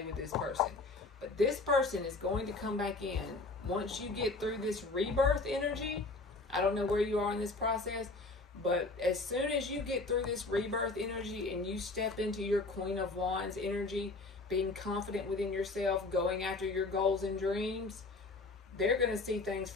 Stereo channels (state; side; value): quieter; right; 3.4 dB